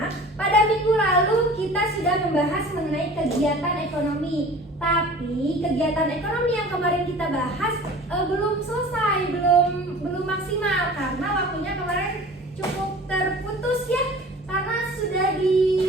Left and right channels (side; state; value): both; normal; correlation 0.42